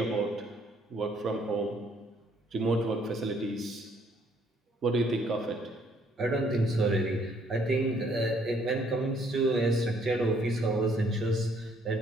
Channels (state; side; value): normal; both; correlation 0.65